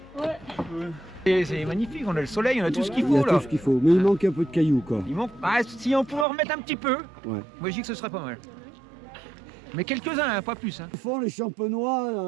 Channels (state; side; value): drops out; left; at 6.2 s